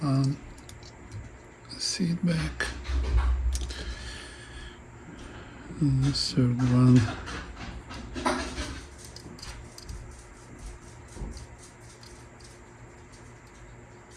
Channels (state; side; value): identical; both; correlation 1.00